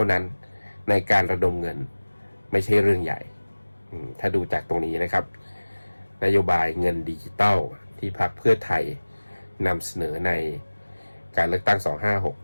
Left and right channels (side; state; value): both; inverted; correlation -1.00